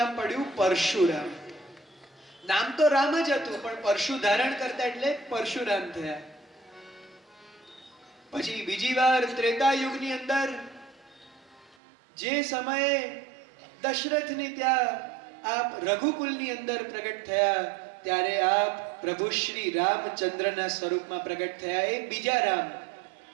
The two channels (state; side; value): drops out; left; at 11.8 s